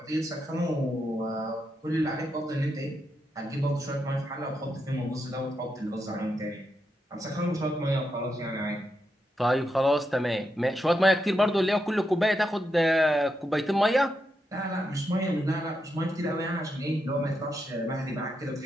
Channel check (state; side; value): normal; both; correlation 0.84